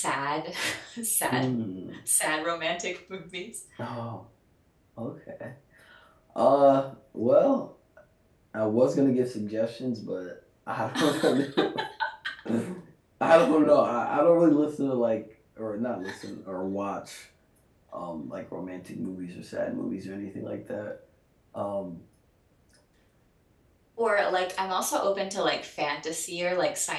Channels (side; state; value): both; identical; correlation 1.00